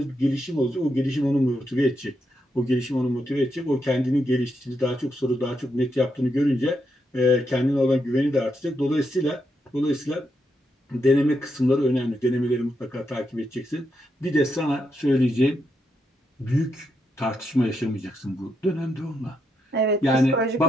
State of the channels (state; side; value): normal; both; correlation 0.81